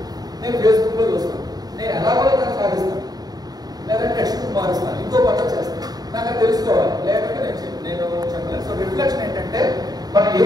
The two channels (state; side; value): late; left; 0.19 ms